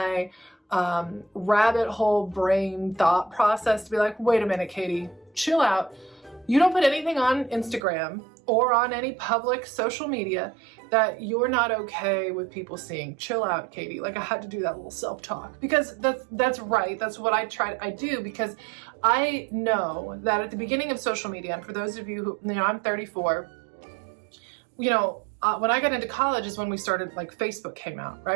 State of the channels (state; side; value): drops out; left; at 7.8 s